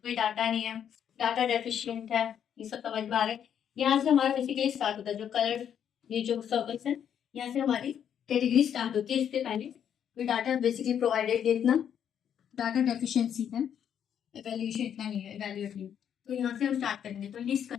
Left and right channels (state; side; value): quieter; right; 8.9 dB